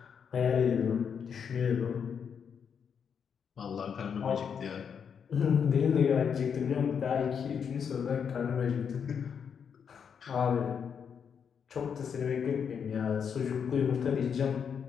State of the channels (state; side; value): quieter; right; 7.1 dB